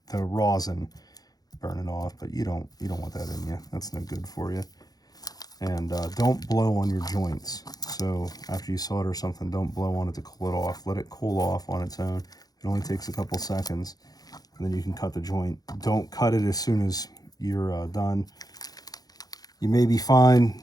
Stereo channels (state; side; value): late; right; 0.19 ms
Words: the rosin burning off, but you don't want that in you. That's no good for you. And don't blow on your joints. So after you solder something, don't blow on it to cool it off. Let it cool off on its own. It only takes a couple seconds. And then you can cut the joint. Don't cut it as soon as you're done. You may be fine